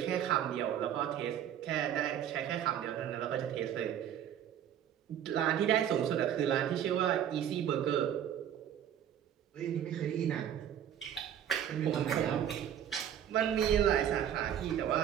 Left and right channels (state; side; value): quieter; left; 10.0 dB